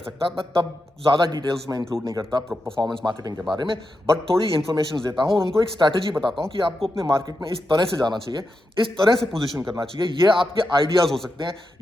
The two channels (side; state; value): both; normal; correlation 0.88